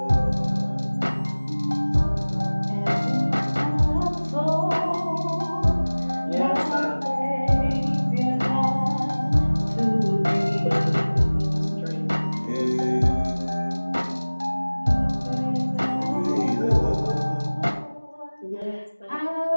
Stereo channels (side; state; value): both; inverted; correlation -1.00